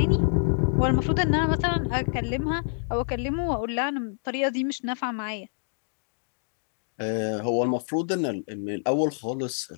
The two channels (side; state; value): right; silent; digital silence